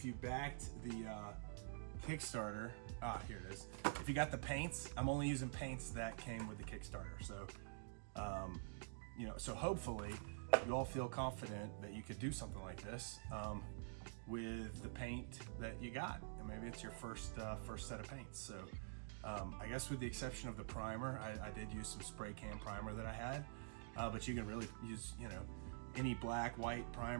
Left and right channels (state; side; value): silent; left; digital silence